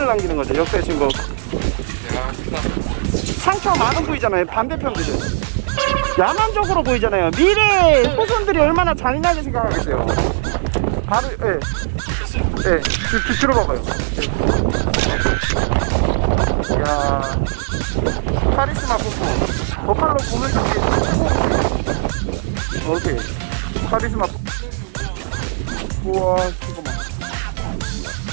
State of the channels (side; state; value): left; silent; digital silence